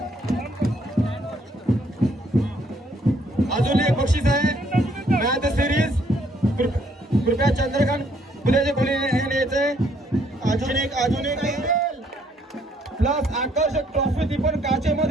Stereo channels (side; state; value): both; normal; correlation 0.67